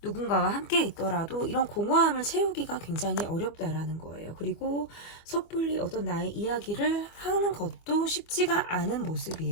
누군가와 함께 있더라도 이런 공허함을 채우기가 굉장히 어렵다라는 거예요. 그리고 섣불리 어떤 나의 이야기를 하는 것도 쉽지가 않은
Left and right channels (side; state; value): right; late; 25 ms